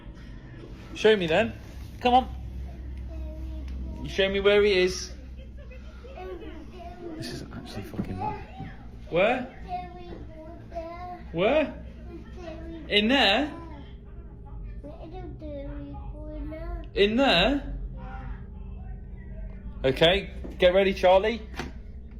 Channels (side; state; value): both; identical; correlation 1.00